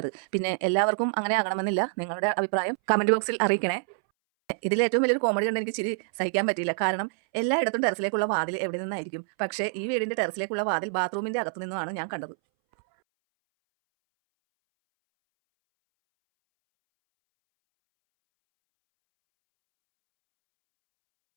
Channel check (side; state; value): left; silent; 60 dB below the other